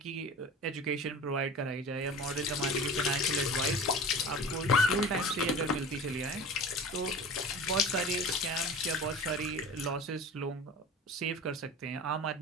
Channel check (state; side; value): normal; both; correlation 0.36